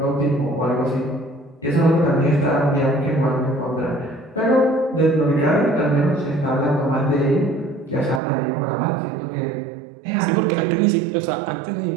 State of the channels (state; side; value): drops out; left; at 8.2 s